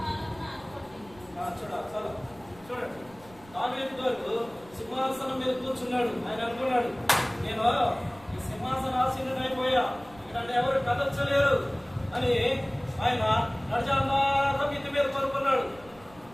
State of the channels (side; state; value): right; noise; rumble, 24 dB below the sound